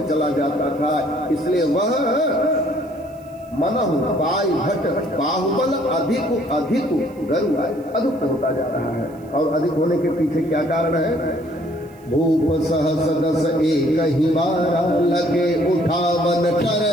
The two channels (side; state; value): right; noise; hiss, 30 dB below the sound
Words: चला जाता था। इसलिए वह मनहु पाई भट बाहुबल अधिक अधिक गरुआय, अधिक होता जा रहा है। और अधिक होने के पीछे क्या कारण है? भूप सहस 10 एकहि 12, लगे उठावन